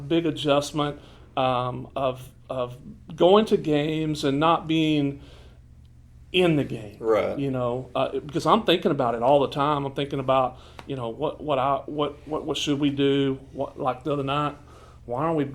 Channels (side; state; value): both; identical; correlation 1.00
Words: big adjustment of going to games and not being in the game, right? Because I'm thinking about it all the time. I'm thinking about what should we do? Like the other night, why aren't we